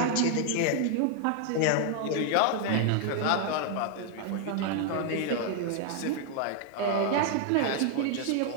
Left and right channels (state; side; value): different; both; correlation 0.00